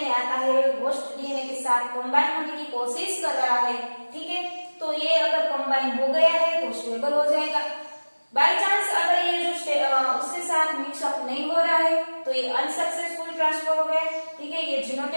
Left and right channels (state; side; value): inverted; both; correlation -1.00